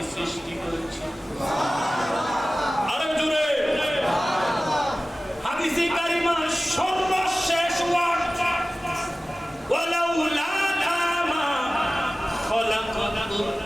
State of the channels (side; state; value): both; normal; correlation 0.96